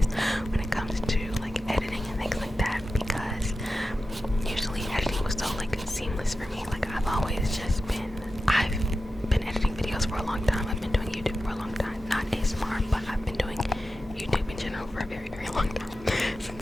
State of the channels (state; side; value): normal; both; correlation 0.93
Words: when it comes to like editing and things like that, because usually editing was so like seamless for me. Like I've been editing videos for a long time. I've been doing YouTube for a long time. Not ASMR, but I've been doing YouTube in general for a very, very long time.